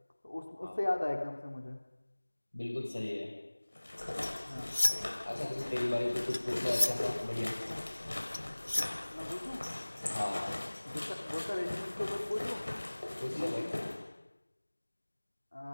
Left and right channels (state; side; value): inverted; both; correlation -1.00